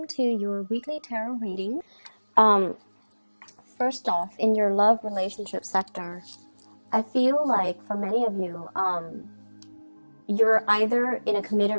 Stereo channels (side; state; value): both; inverted; correlation -1.00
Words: to your weekly tarot reading. Um, First off, in your love relationship sector, I feel like for many of you, you're either in a committed